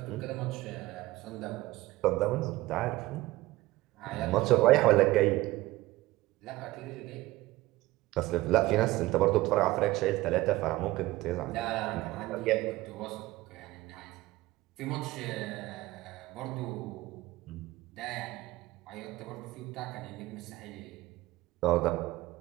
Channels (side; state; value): left; quieter; 18.3 dB